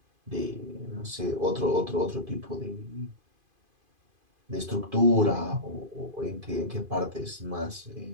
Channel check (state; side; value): late; left; 2.5 ms